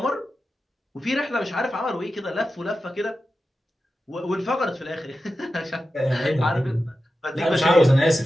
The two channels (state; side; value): normal; both; correlation 0.92